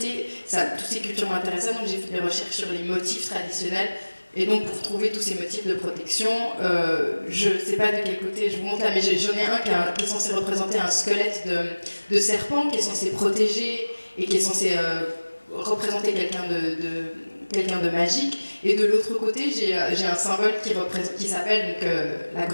toutes ces cultures m'intéressaient, donc j'ai fait des recherches sur les motifs traditionnels. Et donc pour trouver tous ces motifs de protection, je ne sais pas de quel côté je vous montre là, mais j'en ai un qui est censé représenter un squelette de serpent, qui est censé protéger et qui est censé représenter quelqu'un de magique. Et de l'autre côté, j'ai un symbole qui s'appelle donc, la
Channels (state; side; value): inverted; both; correlation -1.00